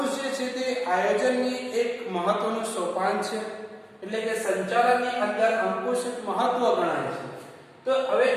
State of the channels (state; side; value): identical; both; correlation 1.00